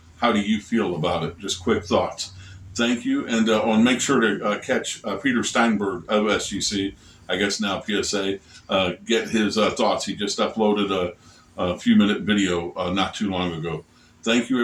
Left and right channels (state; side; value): identical; both; correlation 1.00